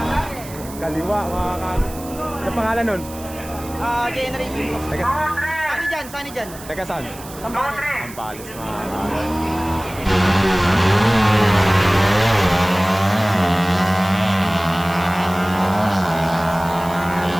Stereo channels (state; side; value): noise; right; hiss, 17 dB below the sound